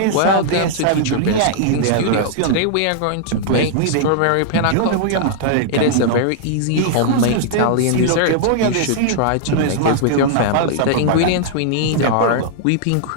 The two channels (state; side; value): different; both; correlation -0.01